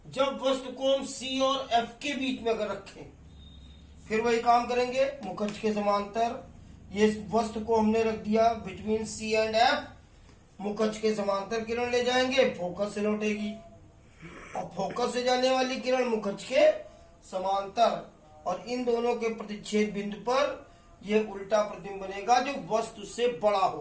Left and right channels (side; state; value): both; identical; correlation 1.00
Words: जब वस्तु को हम C और F के बीच में अगर रखें, फिर वही काम करेंगे। मुख अक्ष के समांतर ये वस्तु को हमने रख दिया बिटवीन C एंड F, मुख अक्ष के समांतर किरण ले जाएंगे, फोकस से लौटेगी, और फोकस से जाने वाली किरण मुख अक्ष के समांतर, और इन दोनों के प्रतिच्छेद बिंदु पर यह उल्टा प्रतिबिंब बनेगा जो वस्तु से बड़ा